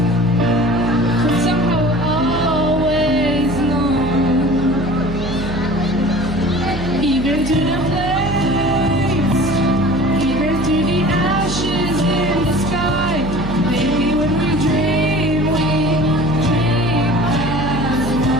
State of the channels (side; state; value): right; noise; hum, 8 dB below the sound